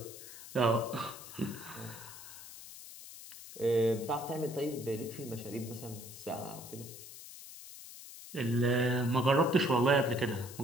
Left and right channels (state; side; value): noise; left; hiss, 14 dB below the sound